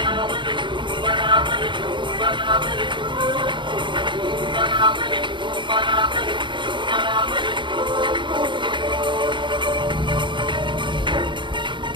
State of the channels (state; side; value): late; left; 0.23 ms